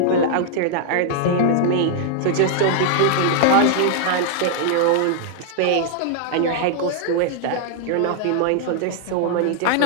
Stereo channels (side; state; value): both; different; correlation -0.01